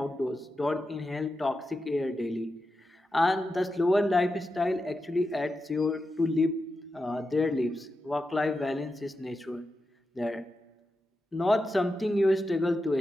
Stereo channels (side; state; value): both; normal; correlation 0.89